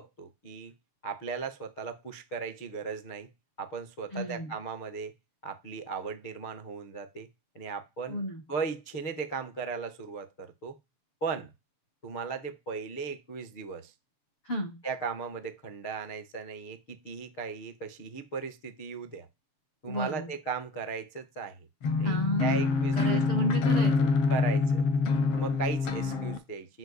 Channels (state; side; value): late; right; 6.6 ms